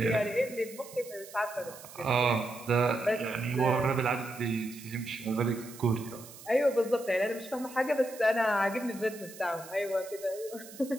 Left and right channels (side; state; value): right; noise; hiss, 17 dB below the sound